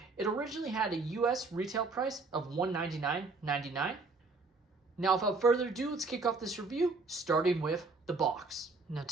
It originally had a US retail price of $199.99. Now, without further ado, let's kick off this review, starting with the box. Now,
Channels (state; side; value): quieter; left; 3.8 dB